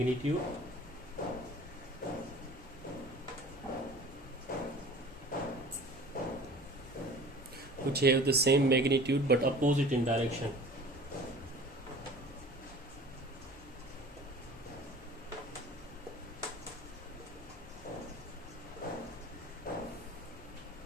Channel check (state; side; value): normal; both; correlation 0.43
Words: magnitude but opposite in direction.